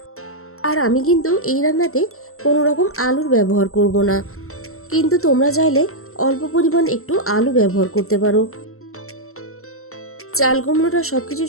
আর আমি কিন্তু এই রান্নাতে কোনো রকম আলুর ব্যবহার করব না, কিন্তু তোমরা চাইলে অল্প পরিমাণ একটু আলু ব্যবহার করতে পারো। চাল কুমড়োটা সব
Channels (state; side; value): late; right; 0.63 ms